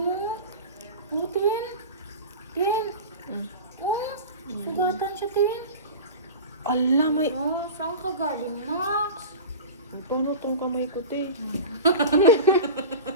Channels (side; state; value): both; inverted; correlation -0.30